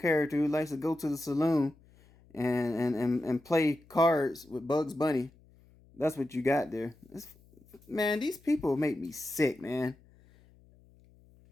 who likes to go to the saloon and play cards with Bugs Bunny. That's what you got there. Man, these people make me sick, man.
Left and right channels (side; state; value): left; noise; hum, 28 dB below the sound